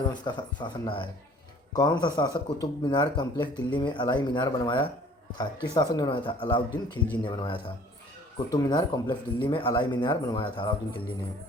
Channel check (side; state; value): both; normal; correlation 0.53